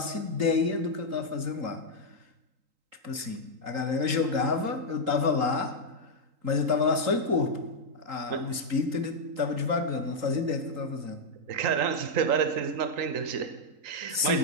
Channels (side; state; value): left; late; 3.8 ms